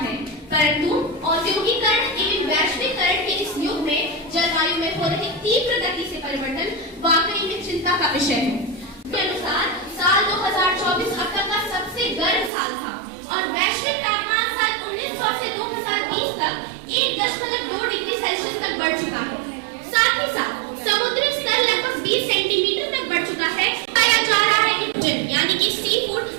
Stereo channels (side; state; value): left; drops out; at 12.5 s